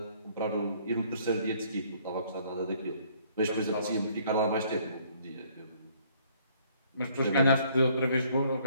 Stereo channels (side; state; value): both; inverted; correlation -0.62